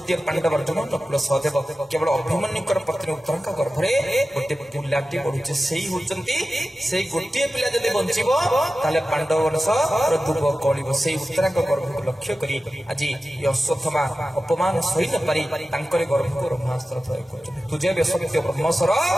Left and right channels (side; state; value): both; normal; correlation 0.94